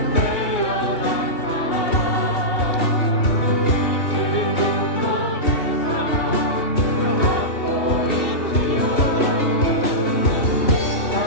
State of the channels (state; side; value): late; right; 2.7 ms